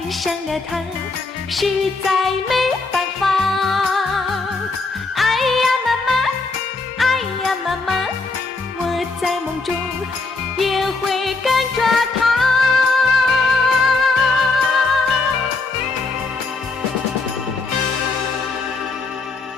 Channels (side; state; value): right; quieter; 3.8 dB